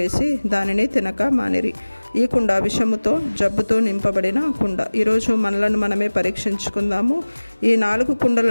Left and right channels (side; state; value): both; inverted; correlation -1.00